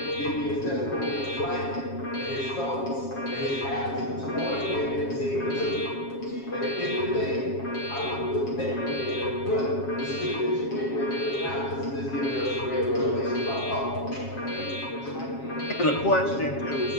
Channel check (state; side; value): late; right; 7.3 ms